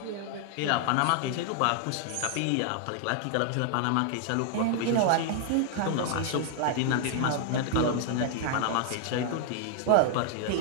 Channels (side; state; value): both; different; correlation 0.00